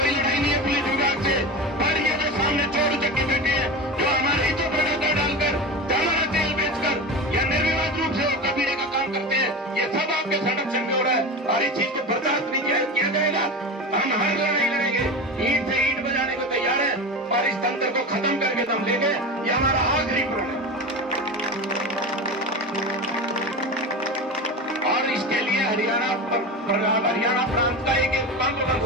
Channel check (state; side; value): normal; both; correlation 0.25